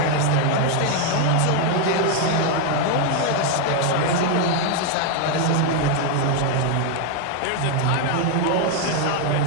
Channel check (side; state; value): both; different; correlation 0.01